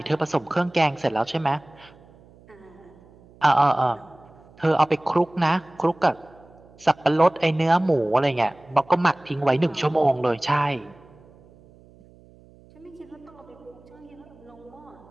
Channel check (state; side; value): noise; right; hum, 26 dB below the sound